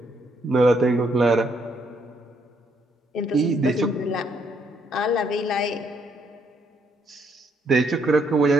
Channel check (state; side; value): normal; both; correlation 0.72